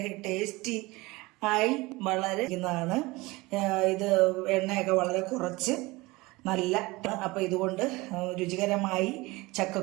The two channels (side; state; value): left; quieter; 22.1 dB